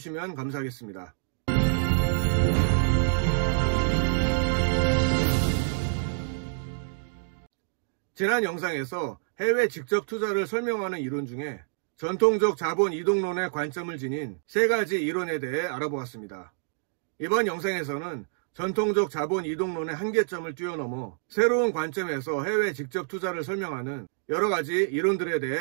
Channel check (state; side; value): silent; left; digital silence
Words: 감사하겠습니다. 지난 영상에서 해외 직접 투자를 설명하는 이론 중에 전통적 자본 이동론의 관점을 지닌 3가지 이론에 대해 알아보았습니다. 이번 영상에서는 전통적 자본 이동론의 한계점을 뛰어넘어 새로운 관점에서 해외 직접 투자를 설명하는 여러가지 이론들에 대해